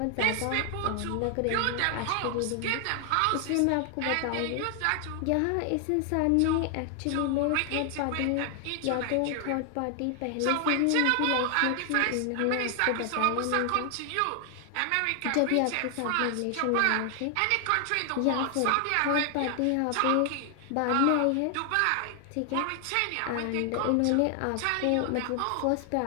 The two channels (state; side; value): different; both; correlation 0.00